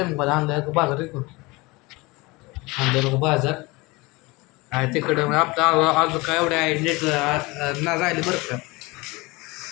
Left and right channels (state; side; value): quieter; right; 23.8 dB